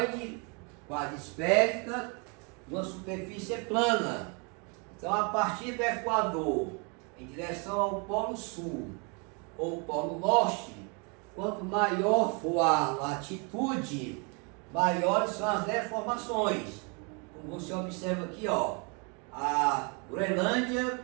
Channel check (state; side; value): quieter; left; 33.8 dB